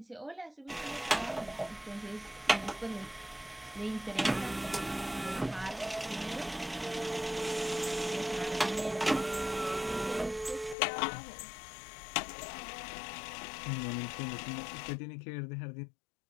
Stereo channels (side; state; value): right; drops out; at 10.8 s